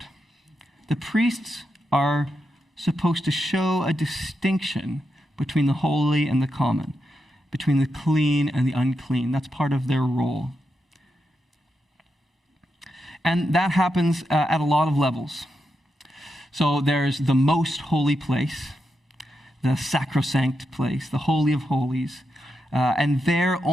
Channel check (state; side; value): normal; both; correlation 0.86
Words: The priests are supposed to show a distinction between the holy and the common, between the clean and the unclean. That's part of their role. And that happens at a lot of levels. So there's the most holy place, the sacrosanct place, the Holy of Holies. And there